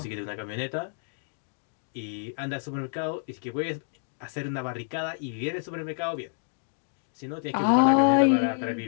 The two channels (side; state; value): right; silent; digital silence